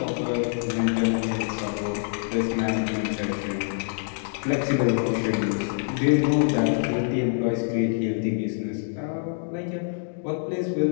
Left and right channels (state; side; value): silent; right; digital silence